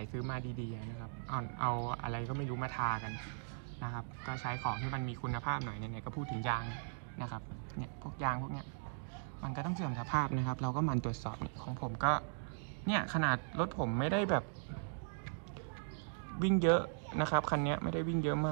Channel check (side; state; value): left; silent; digital silence